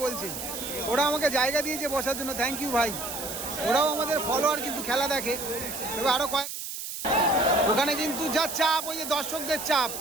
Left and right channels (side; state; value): right; noise; hiss, 7 dB below the sound